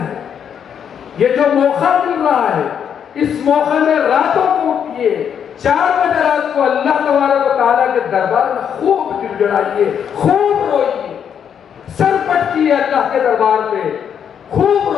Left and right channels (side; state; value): right; quieter; 8.2 dB